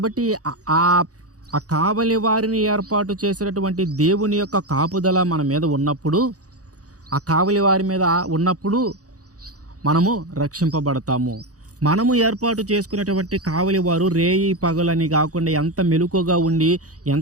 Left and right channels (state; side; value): late; left; 0.67 ms